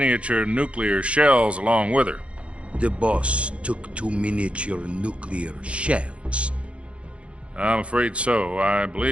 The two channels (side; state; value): left; late; 0.061 ms